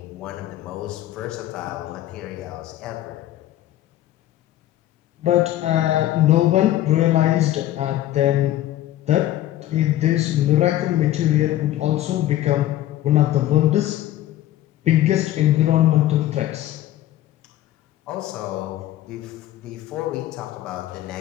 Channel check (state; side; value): quieter; right; 13.8 dB